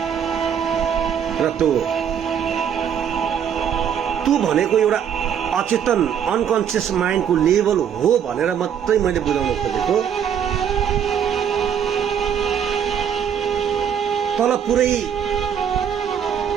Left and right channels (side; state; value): left; quieter; 8.4 dB